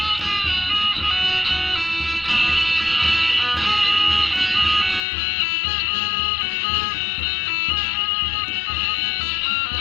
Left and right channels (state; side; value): drops out; right; at 5.0 s